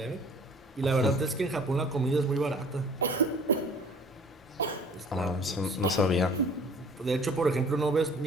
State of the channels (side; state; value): both; normal; correlation 0.50